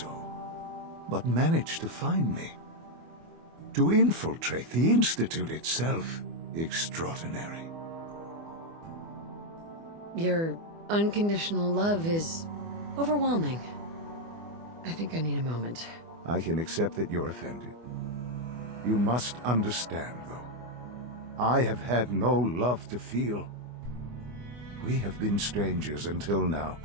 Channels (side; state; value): left; late; 24 ms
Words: but manage to find me. To infiltrate the Institute itself. Extraordinary. Your unconditional love is overwhelming. I think I need a moment. I can accept that you're offended. You must understand, though. I have had no love to feel. We have been strangers until now,